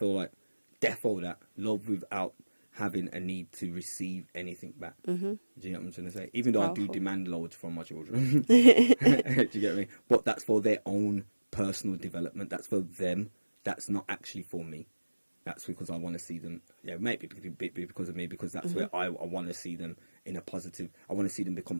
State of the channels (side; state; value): both; inverted; correlation -1.00